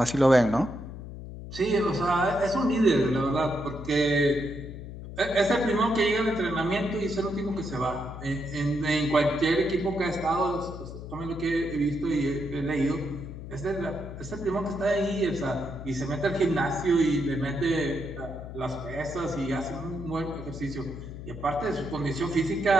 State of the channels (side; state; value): left; noise; hum, 11 dB below the sound